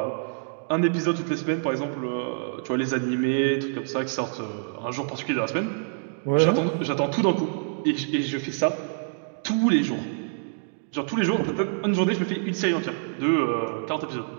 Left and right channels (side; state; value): left; silent; digital silence